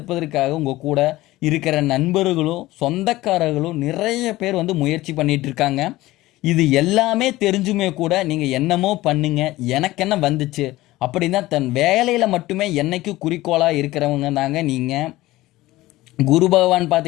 உங்கள் கூட இருக்கிற நண்பர்களும் சொந்தக்காரர்களும் நிறைய பேர் முயற்சி பண்ணிகிட்டு இருக்காங்க. இது எல்லாமே தெரிஞ்சுமே கூட நீங்கள் என்னமோ பண்ணுங்க, எனக்கு என்ன வந்துச்சு அப்படின்னா தன் வேலையில் மட்டுமே என்னைக்கு குறிக்கோளாக இருக்கிறவங்க தாங்க நீங்கள். குரு பகவான்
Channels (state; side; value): quieter; right; 17.7 dB